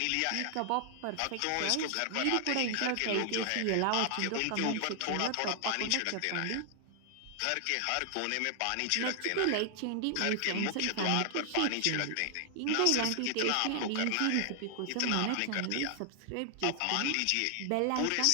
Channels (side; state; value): both; different; correlation 0.00